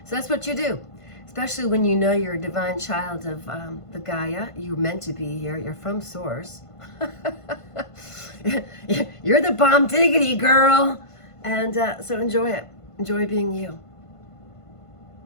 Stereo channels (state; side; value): late; right; 1.5 ms